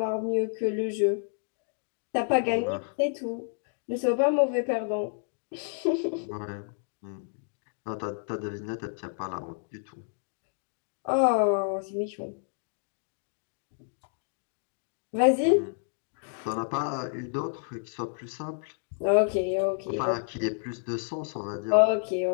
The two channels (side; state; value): right; silent; digital silence